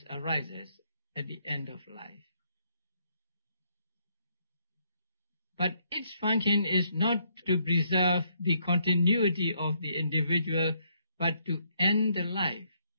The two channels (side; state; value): both; inverted; correlation -0.73